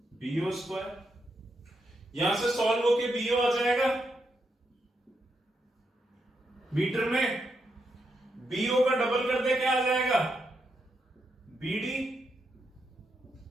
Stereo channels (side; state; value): both; normal; correlation 0.82